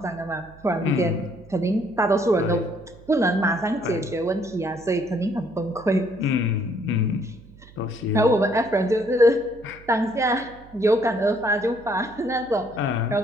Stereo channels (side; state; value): right; noise; hum, 22 dB below the sound